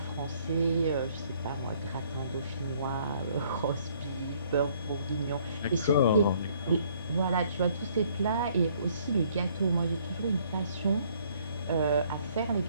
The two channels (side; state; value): both; inverted; correlation -0.63